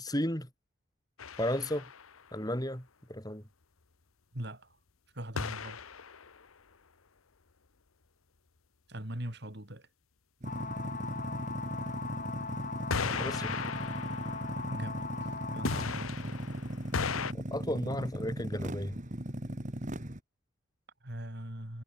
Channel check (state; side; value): normal; both; correlation 0.49